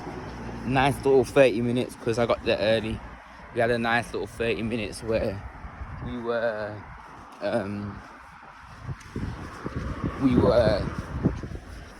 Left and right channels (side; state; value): both; identical; correlation 1.00